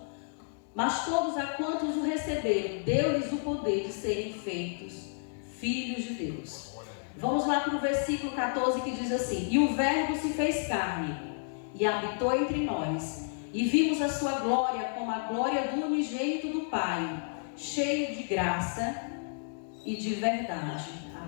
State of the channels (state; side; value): silent; right; digital silence